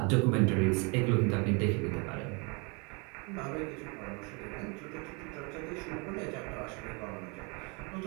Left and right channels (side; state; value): left; quieter; 31.8 dB